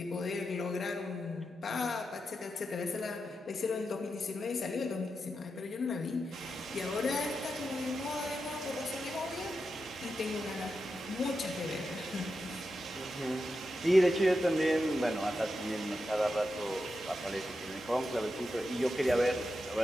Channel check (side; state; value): both; normal; correlation 0.88